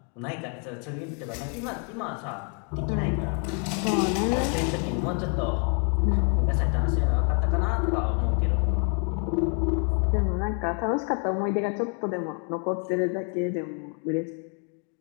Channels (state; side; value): quieter; right; 37.7 dB